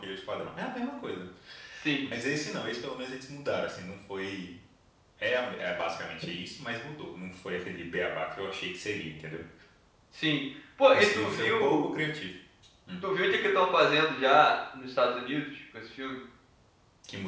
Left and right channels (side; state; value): both; identical; correlation 1.00